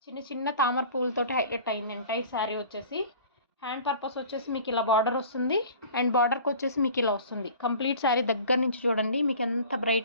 చిన్న చిన్న తామర పువ్వులతోటి హైలైట్ అయింది ఎంటైర్ శారీ వచ్చేసి. హ్యాండ్ పర్పస్ వచ్చేసి మీకు ఇలా బార్డర్ వస్తుంది, అండ్ బార్డర్కి వచ్చేసి మీకు ఇలా వస్తుంది. కంప్లీట్ శారీ దగ్గర నుంచి చూడండి, మీకు ఎంత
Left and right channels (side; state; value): both; inverted; correlation -0.43